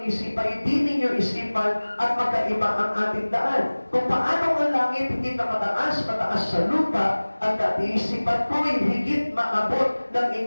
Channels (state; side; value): inverted; both; correlation -1.00